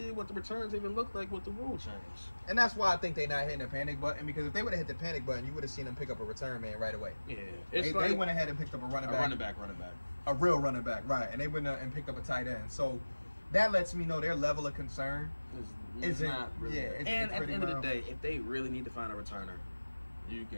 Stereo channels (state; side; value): inverted; both; correlation -1.00